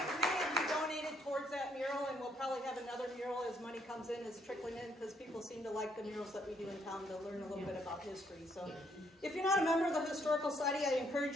Probably have another mural as money comes in, is trickling in, because people seem to like the murals that we do in town to learn a little bit about history. So if you're not a member of the Historical Society, I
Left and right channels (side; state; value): both; normal; correlation 0.70